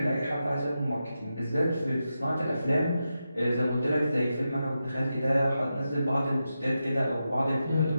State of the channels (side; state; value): both; inverted; correlation -0.89